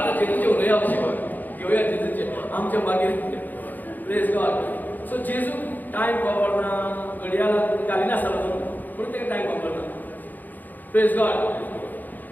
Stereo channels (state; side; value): late; right; 0.085 ms